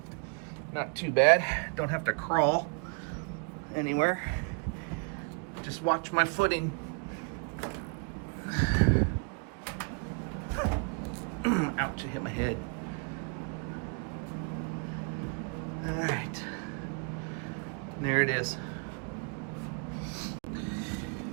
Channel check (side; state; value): left; quieter; 35.2 dB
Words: Not too bad. Don't have to crawl anywhere. Just watch my footing. Ouch, I hit my head. All right. There it is.